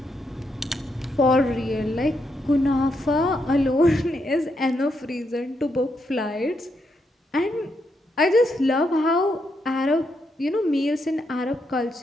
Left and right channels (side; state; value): both; normal; correlation 0.80